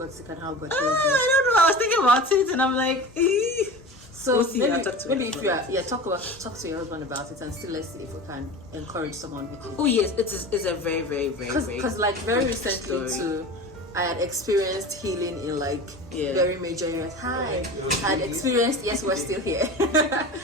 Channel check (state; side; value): normal; both; correlation 0.33